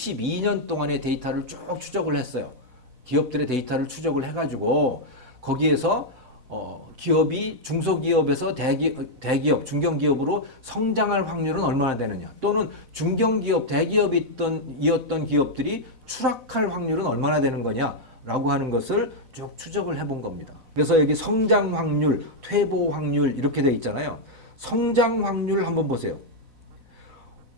동안의 데이터를 쭉 추적을 했어요. 기업들의 데이터를 추적을 해가지고 거기에서 기업이 중소기업에서 대기업, 중견기업으로 성장할 확률은 얼마나 되느냐, 또는 중견기업, 대기업이었던 기업들이 추락할 확률은 얼마나 되는 거냐라고 하는 것을 쭉 추적을 해본 겁니다. 그래서 여기 성장 확률, 퇴보 확률 이렇게 돼 있잖아요. 성장 확률 한번 보세요.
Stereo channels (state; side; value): late; left; 4.0 ms